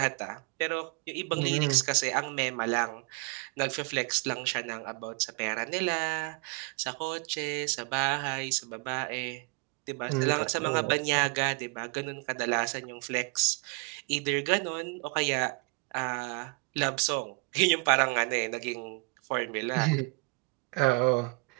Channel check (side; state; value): left; quieter; 31.2 dB